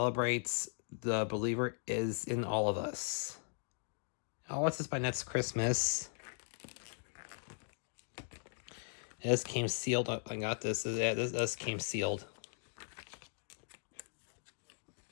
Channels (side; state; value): right; silent; digital silence